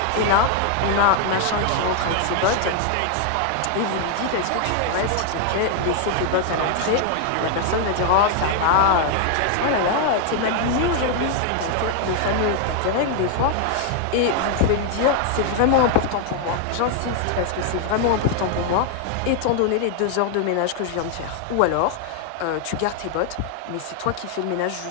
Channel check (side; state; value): both; different; correlation 0.00